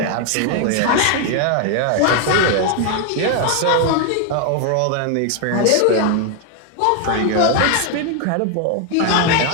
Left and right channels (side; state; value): both; different; correlation 0.01